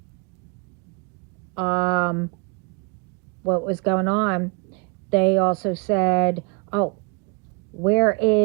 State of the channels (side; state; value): left; quieter; 29.7 dB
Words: um, what was going on. They also said, oh, where